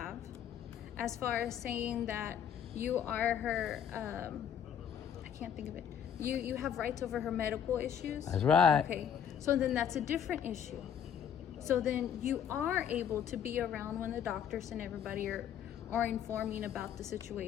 as far as saying that you are her, I can't think of it. You have rights over her medical issues. That's right. Okay. So then that's a different issue. So then you are able to be around when the doctors and everybody are informing about the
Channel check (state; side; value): quieter; right; 8.7 dB